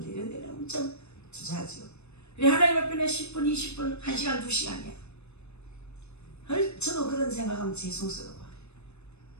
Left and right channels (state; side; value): late; right; 0.81 ms